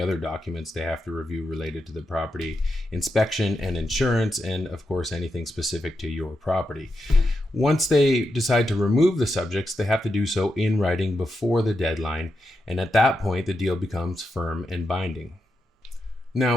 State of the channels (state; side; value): normal; both; correlation 0.86